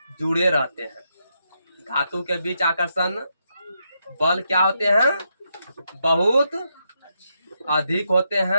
जुड़े रहते हैं। धातु के बीच आकर्षण बल क्या होते हैं? बहुत अधिक होते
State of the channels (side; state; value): both; inverted; correlation -0.82